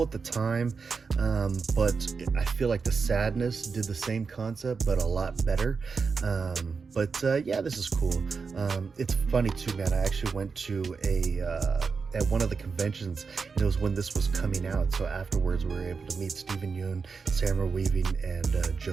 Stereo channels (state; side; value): quieter; left; 5.1 dB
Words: at the time, but I feel like The Sadness did the same concept, but a lot better. Yeah, this is cool. It's funny too, man. I actually went to at one of the conventions, and it was when this was coming out. So afterwards, we were able to meet Stephen Yeun, Samara Weaving, and